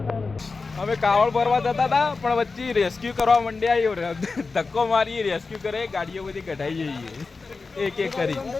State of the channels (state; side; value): quieter; right; 4.2 dB